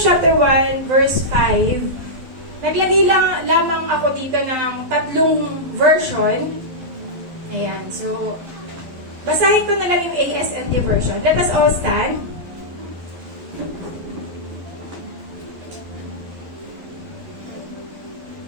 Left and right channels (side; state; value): left; late; 12 ms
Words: chapter 1, verse 5, naglagay lamang ako dito ng 3 version. Ayan, so, basahin ko na lang yung ASND version. Let us all stand.